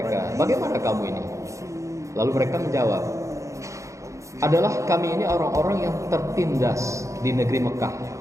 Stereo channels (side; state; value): left; late; 0.15 ms